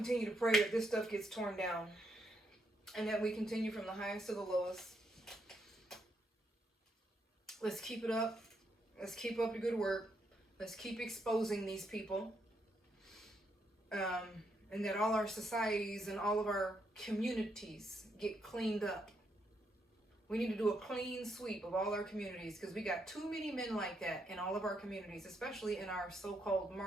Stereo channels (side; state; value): both; normal; correlation 0.78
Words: to pray that this stuff gets torn down and that we continue from the highest to the lowest. Let's keep it up. Let's keep up the good work. Let's keep exposing these people. And that all our societies and all of our communities get cleaned up. We need to do a clean sweep of all our communities because we got too many men like that in all of our communities, especially in our so-called